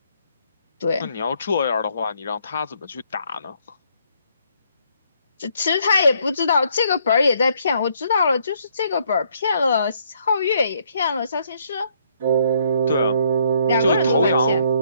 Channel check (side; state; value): both; inverted; correlation -0.69